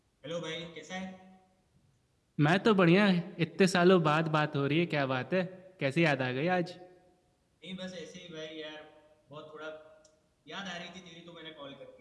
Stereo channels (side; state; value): both; identical; correlation 1.00